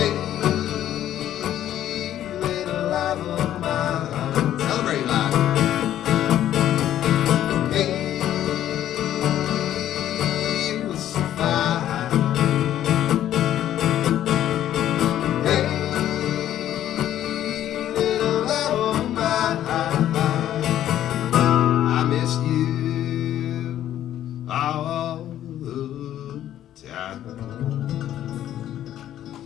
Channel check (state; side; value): quieter; right; 11.8 dB